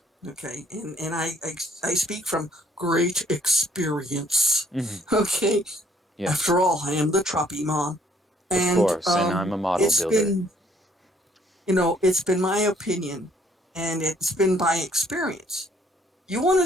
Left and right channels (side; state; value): both; normal; correlation 0.64